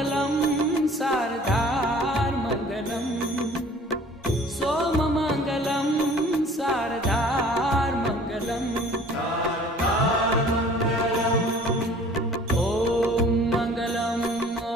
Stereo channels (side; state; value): both; normal; correlation 0.50